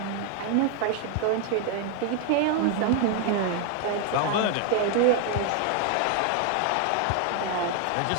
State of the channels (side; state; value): both; different; correlation 0.00